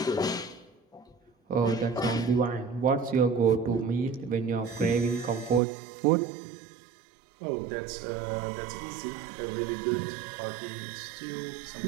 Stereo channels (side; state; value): left; drops out; at 5.6 s